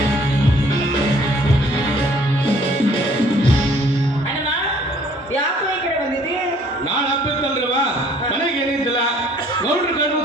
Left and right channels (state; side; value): normal; both; correlation 0.58